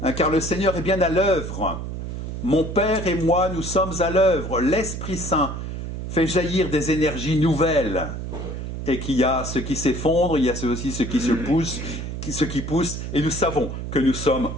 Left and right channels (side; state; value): right; noise; hum, 6 dB below the sound